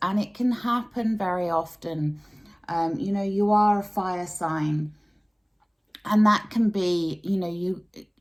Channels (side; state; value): both; identical; correlation 1.00